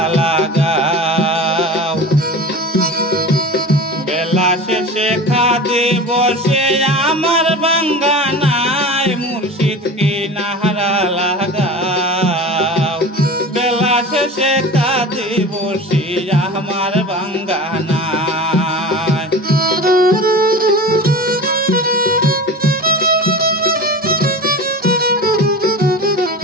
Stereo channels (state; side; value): normal; both; correlation 0.33